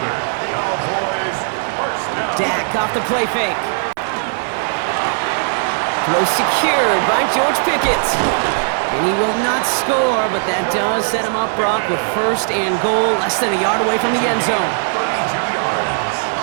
Cowboys first down. Dak off the play fake. Throw secured by George Pickett. And he will not score, but that does set him up, Brock, with first and goal, less than a yard away from the end zone. 32 yards.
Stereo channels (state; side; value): silent; left; 65 dB below the other